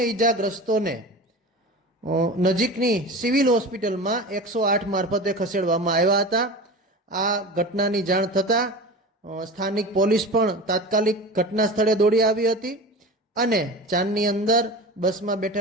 ઈજાગ્રસ્તોને નજીકની સિવિલ હોસ્પિટલમાં 108 મારફતે ખસેડવામાં આવ્યા હતા। આ ઘટનાની જાણ થતાં સ્થાનિક પોલીસ પણ તાત્કાલિક ઘટના સ્થળે દોડી આવી હતી અને જાનની અંદર બસમાં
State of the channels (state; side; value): normal; both; correlation 0.32